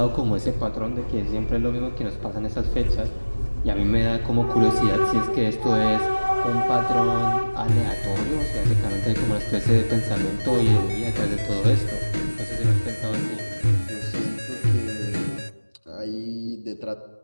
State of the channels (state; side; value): inverted; both; correlation -1.00